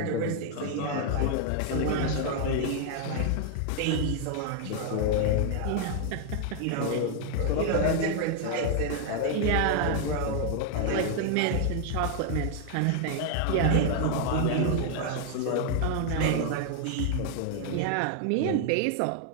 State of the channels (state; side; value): different; both; correlation 0.00